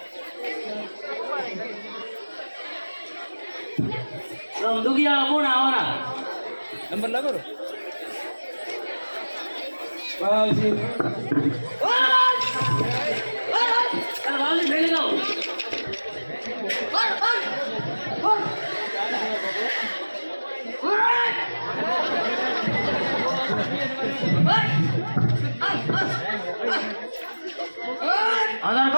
दुगिया कौन आवरा नंबर लगो रो बाजी अरे बाजी खेले जाओ आधार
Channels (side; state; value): both; inverted; correlation -1.00